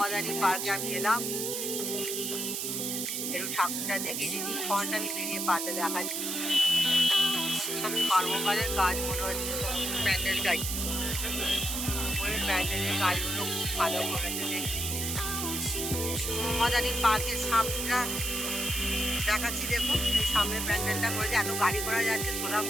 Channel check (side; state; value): right; noise; hiss, 2 dB below the sound